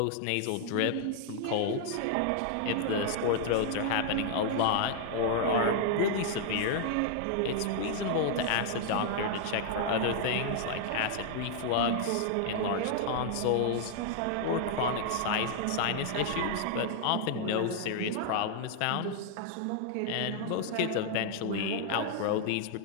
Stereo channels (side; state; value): both; different; correlation 0.00